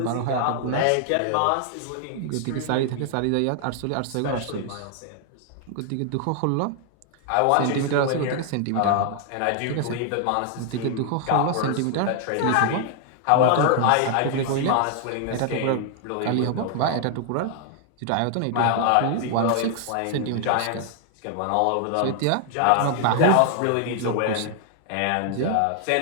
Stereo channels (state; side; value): different; both; correlation 0.00